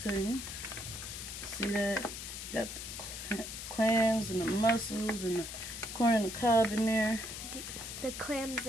See that? Got the clams and the mussels and the corn and the cob in there. The clams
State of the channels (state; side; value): noise; left; hiss, 8 dB below the sound